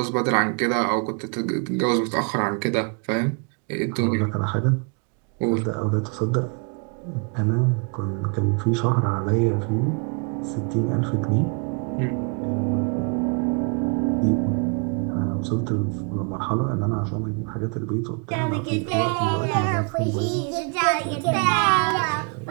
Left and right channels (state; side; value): quieter; left; 36.0 dB